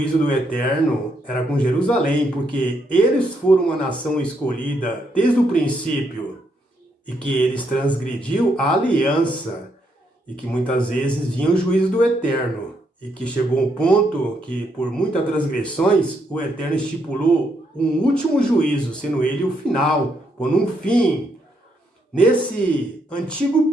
do Eterno era com Jerusalém, porque eles foram uma nação escolhida desde o princípio, e que eles transgrediu a aliança, e que muitas vezes vinha o juízo do Eterno, e que chegou um ponto que, por muitas transgressões, o Eterno estipulou um último juízo, sendo ele o final, pondo um fim nesse antigo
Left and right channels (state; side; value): normal; both; correlation 0.76